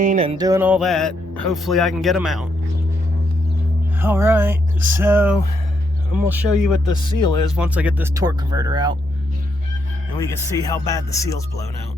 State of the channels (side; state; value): both; normal; correlation 0.77